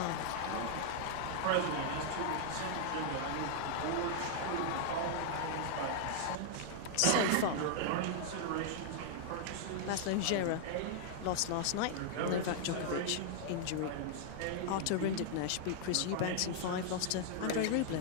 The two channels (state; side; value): different; both; correlation -0.01